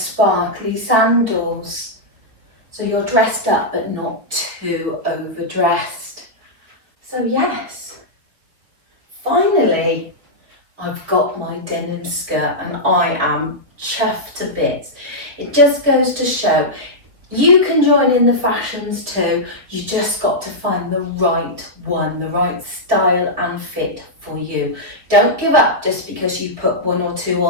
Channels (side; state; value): left; late; 4.2 ms